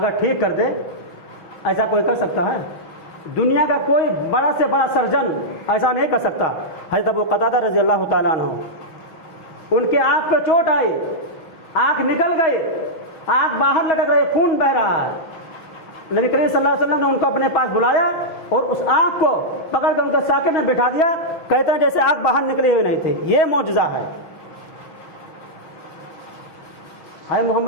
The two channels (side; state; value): right; late; 6.3 ms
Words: ٹھیک کر دے, ایسا کوئی کر سکتا ہے؟ دنیا کا کوئی بڑا سے بڑا سرجن ایسا نہیں کر سکتا. حضرت ابو قتادہ رضی اللہ تعالیٰ عنہ, ان کے آنکھ پہ چوٹ آئی, آنکھ نکل گئی, آنکھ باہر لٹک رہی, خون بہ رہا ہے. نبی کریم صلی اللہ علیہ وسلم نے ان کو اپنے پاس بلایا اور اس آنکھ کو پکڑ کر ان کے ساکن میں بٹھا دیا, کہتے ہیں جیسے آنکھ باہر نکلی ہوئی نہیں تھی. یہ معجزہ ہے.